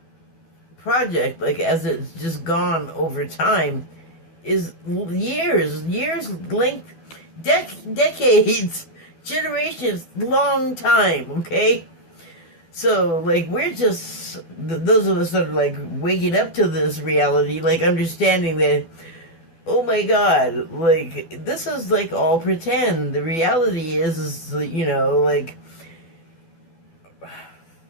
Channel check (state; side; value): late; right; 12 ms